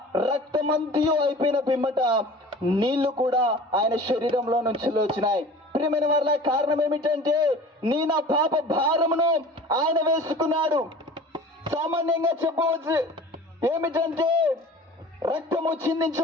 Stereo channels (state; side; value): normal; both; correlation 0.42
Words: రక్తమంతయు అయిపోయిన పిమ్మట నీళ్లు కూడా ఆయన శరీరంలో నుంచి వచ్చినాయి. ప్రియమైన వారిలో కారణం ఏమిటంటే నా పాప భారమును ఆయన వేసుకున్నాడు. సామాన్యంగా చెప్పవచ్చు ఏమిటంటే రక్తము